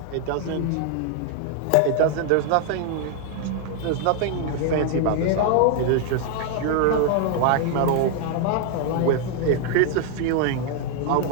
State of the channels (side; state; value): both; different; correlation 0.00